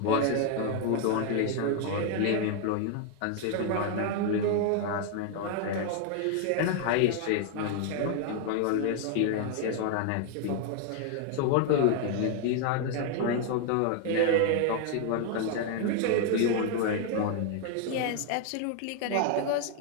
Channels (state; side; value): different; both; correlation 0.00